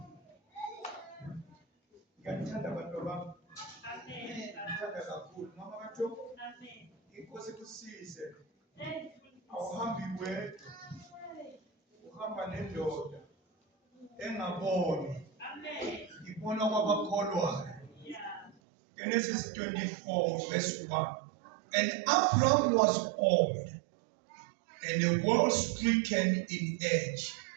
Ngiyathanda abantu bami. Amen. Ngithanda kakhulu. Mama kaJobo. Amen. Inkosi kusize. Awuhambi wedwa. Uhamba nendoda engaboni. Amen. Ibona kwabakholwayo. Yeah. Genesis 24 verse 1. And Abraham was old, and the world stricken in age.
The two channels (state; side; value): drops out; left; at 18.6 s